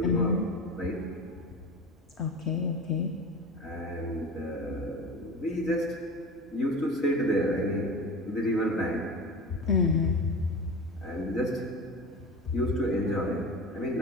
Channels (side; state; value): both; normal; correlation 0.31